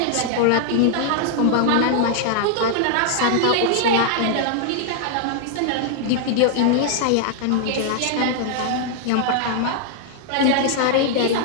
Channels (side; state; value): both; different; correlation 0.00